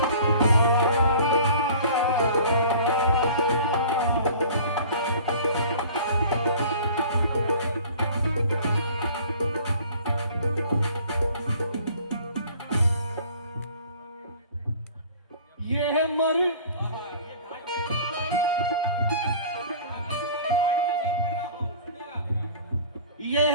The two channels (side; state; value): both; inverted; correlation -0.47